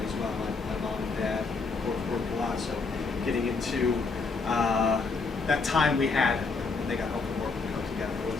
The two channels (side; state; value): right; quieter; 4.3 dB